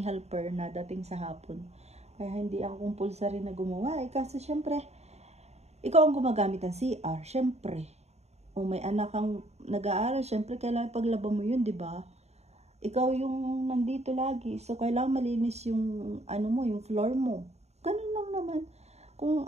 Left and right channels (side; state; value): left; late; 0.31 ms